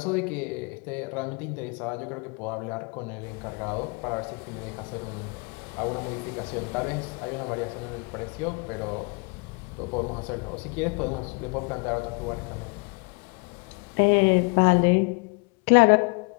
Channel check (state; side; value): quieter; right; 32.7 dB